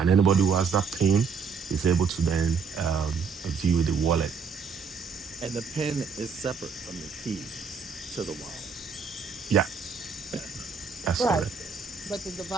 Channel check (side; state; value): left; quieter; 5.6 dB